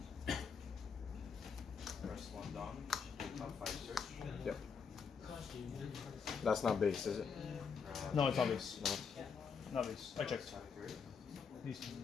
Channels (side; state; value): right; quieter; 6.0 dB